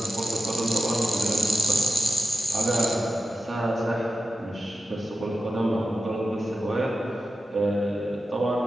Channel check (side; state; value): both; normal; correlation 0.92